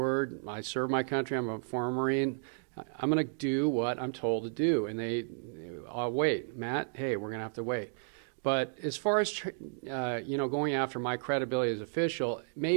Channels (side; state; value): left; silent; digital silence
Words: I serve my country. I'm a former Marine. I'm going to do what I'm told to do, and I'll wait. Matt, hey, we're going to have to wait. But as far as going after my credibility as official,